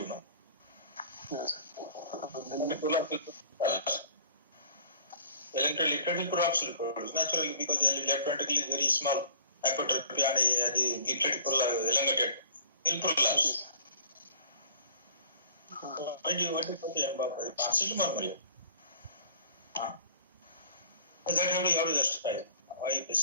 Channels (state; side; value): inverted; both; correlation -0.48